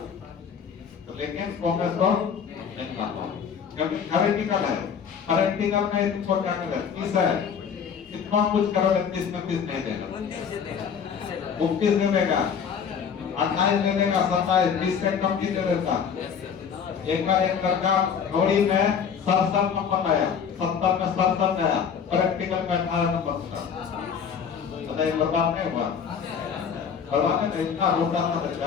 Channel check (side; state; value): right; quieter; 7.1 dB